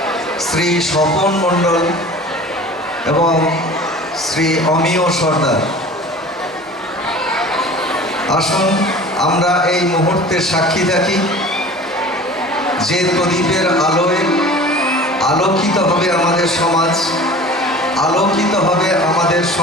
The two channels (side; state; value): both; normal; correlation 0.41